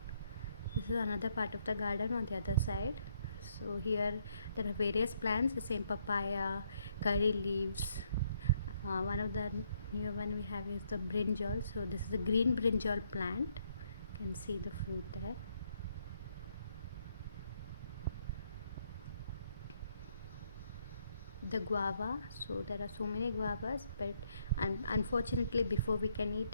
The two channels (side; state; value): both; inverted; correlation -0.72